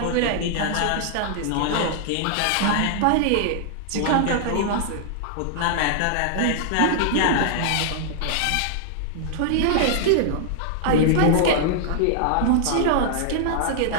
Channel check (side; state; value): both; different; correlation -0.01